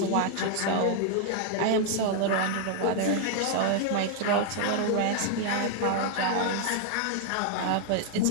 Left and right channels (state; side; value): different; both; correlation 0.00